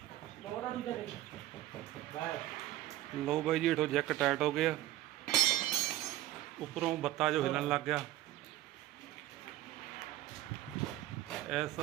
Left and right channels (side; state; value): left; quieter; 14.9 dB